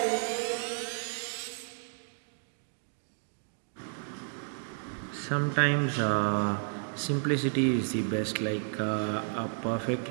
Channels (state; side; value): silent; left; 56 dB below the other